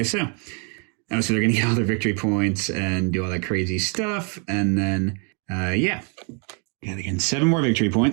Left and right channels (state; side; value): quieter; left; 37.9 dB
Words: so. Oh, so they're going to get all their victory points and do all that crazy stuff. And then, yeah, they're getting 7 more victory